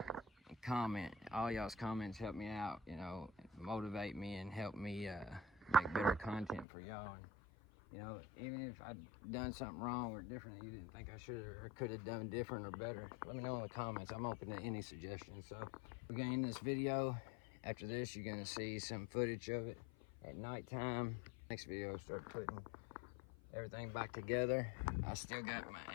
and comment. All y'all's comments help me out, you know, motivate me and help me make better content for y'all. And, you know, even if I've done something wrong or different that you didn't think I should or could have done different or better, let me know in the comments. I'm open to any suggestions. So we're gonna end this video. After this, you're gonna see some footage of it at nighttime. Next video, start putting everything back together. I still got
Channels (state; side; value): drops out; right; at 6.7 s